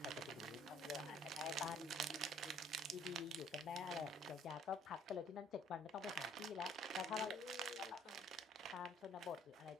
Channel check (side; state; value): both; normal; correlation 0.59